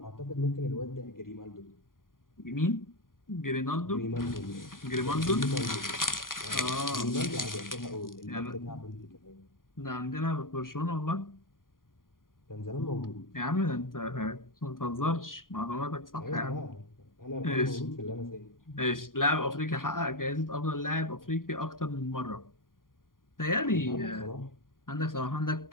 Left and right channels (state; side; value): late; right; 0.90 ms